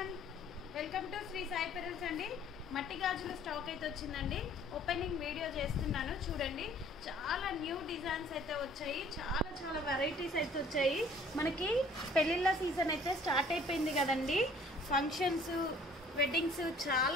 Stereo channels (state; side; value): normal; both; correlation 0.55